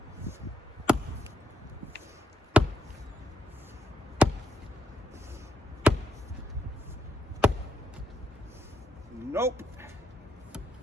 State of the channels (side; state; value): both; normal; correlation 0.77